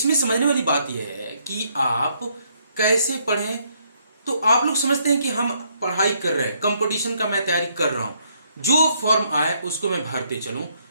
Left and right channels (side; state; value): both; inverted; correlation -0.71